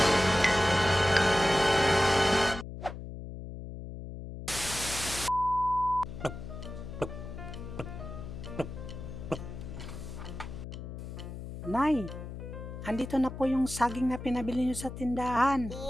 Nay, andito na po yung saging na pinabili nyo sa tindahan.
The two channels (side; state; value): left; noise; hum, 9 dB below the sound